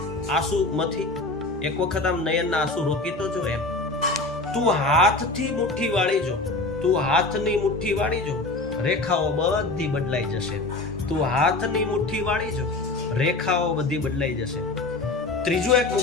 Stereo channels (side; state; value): right; quieter; 3.2 dB